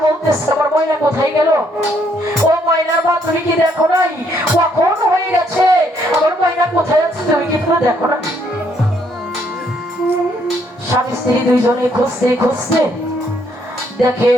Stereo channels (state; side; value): normal; both; correlation 0.70